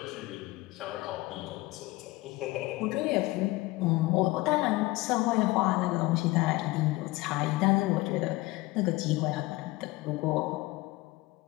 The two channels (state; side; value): quieter; right; 20.7 dB